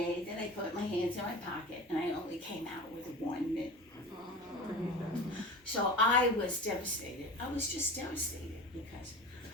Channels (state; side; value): normal; both; correlation 0.33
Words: that I put my hands in my pocket, and I only came out with one mitten. So I was devastated. I was just devastated because